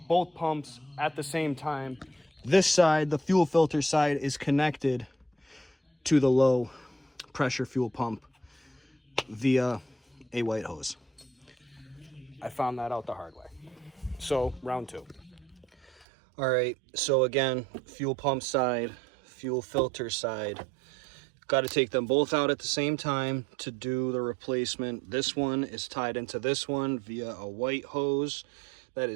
both pumps at the same time. This side, the fuel filter side, is connected to the low pressure fuel pump via a white hose. I found that out the hard way. So, round 2. All right, so again, fuel pump side, fuel filter side. Got to take them both out at the same time to do the replacement. This one is tied into this one via a white hose that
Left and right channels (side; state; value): left; drops out; at 16.1 s